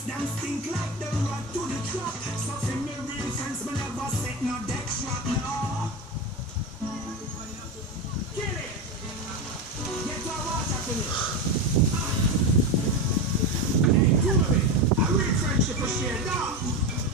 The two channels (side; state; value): both; normal; correlation 0.18